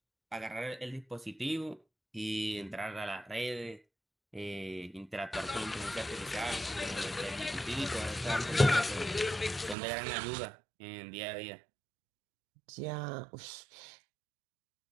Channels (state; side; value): drops out; left; at 9.8 s